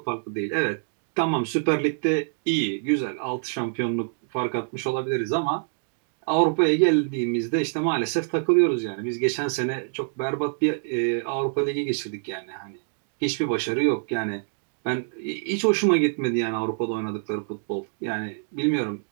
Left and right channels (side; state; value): left; silent; digital silence